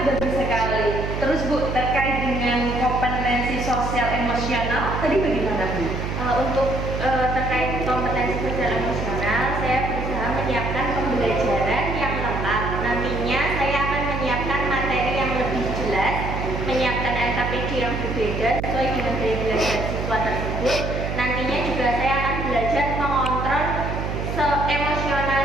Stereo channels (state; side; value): noise; right; hum, 3 dB below the sound